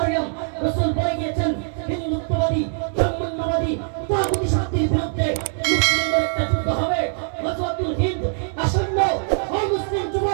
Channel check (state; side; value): silent; left; digital silence